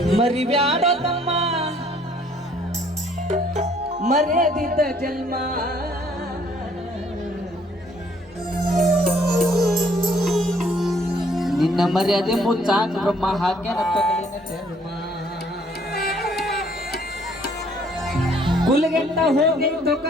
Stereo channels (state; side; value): normal; both; correlation 0.62